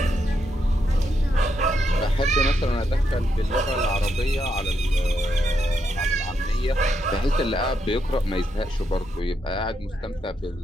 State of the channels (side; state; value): both; normal; correlation 0.80